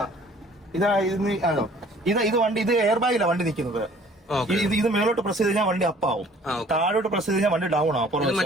ഇത് വണ്ടി, ഇത് എയർ ബാഗിലാണ് വണ്ടി നിൽക്കുന്നത്. ഇത് മേലോട്ട് പ്രസ് ചെയ്ത് കഴിഞ്ഞാൽ വണ്ടി അപ്പാവും, താഴോട്ട് പ്രസ് ചെയ്ത് കഴിഞ്ഞാൽ വണ്ടി ഡൗൺ ആവും.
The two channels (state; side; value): normal; both; correlation 0.54